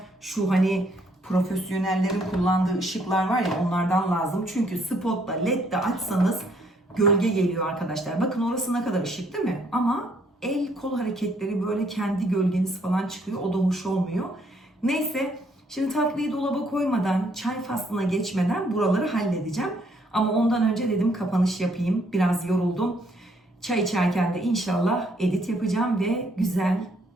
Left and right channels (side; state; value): both; normal; correlation 0.68